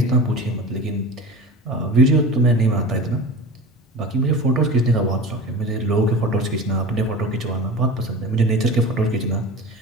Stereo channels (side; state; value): both; normal; correlation 0.33